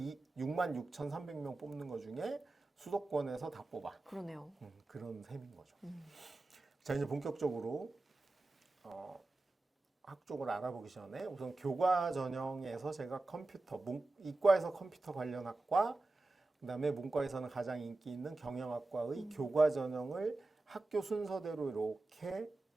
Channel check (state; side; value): quieter; left; 3.1 dB